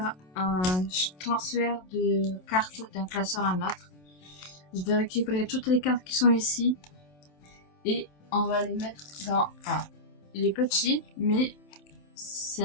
un transfert de cartes d'un classeur à un autre. Je vais récupérer toutes les cartes qui sont ici et on va les mettre dans... il est petit, mais c'est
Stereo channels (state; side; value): late; right; 27 ms